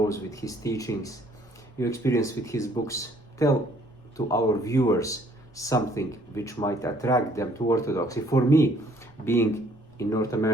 with his teachings, your experience with his books, tell to our viewers something which might attract them to Orthodoxy. For me, being in North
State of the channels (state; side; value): noise; left; rumble, 28 dB below the sound